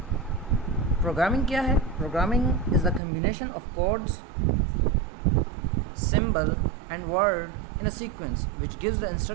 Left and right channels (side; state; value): left; drops out; at 3.0 s